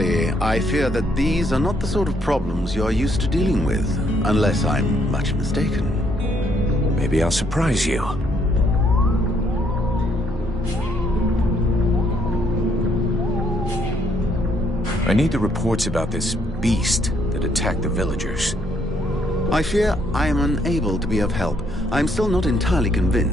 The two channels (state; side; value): normal; both; correlation 0.70